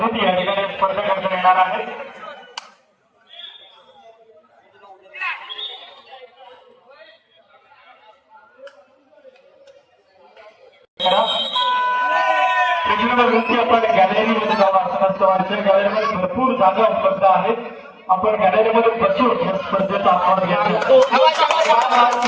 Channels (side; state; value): both; identical; correlation 1.00